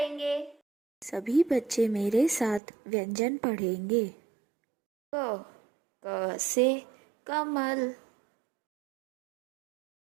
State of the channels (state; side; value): drops out; left; at 2.6 s